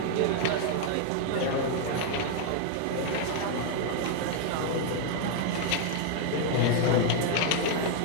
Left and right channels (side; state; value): both; different; correlation 0.00